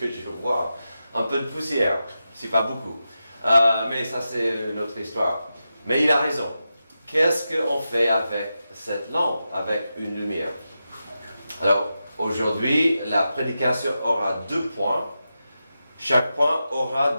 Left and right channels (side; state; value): both; inverted; correlation -0.90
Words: je vois. Un peu de poussière, c'est pas beaucoup. Mais ça, c'est une autre histoire. Mais il a raison. Qu'est-ce qu'on fait avec cette lampe, avec une lumière? Alors, aujourd'hui, la prédication aura 2 points. Chaque point